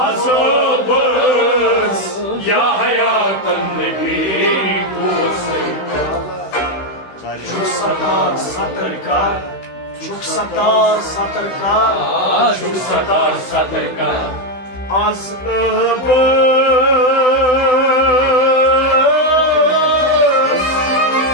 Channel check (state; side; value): late; right; 16 ms